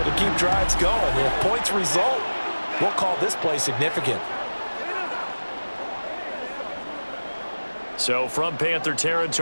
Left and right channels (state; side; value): inverted; both; correlation -1.00